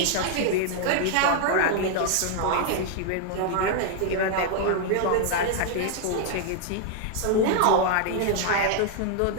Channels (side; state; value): both; different; correlation 0.00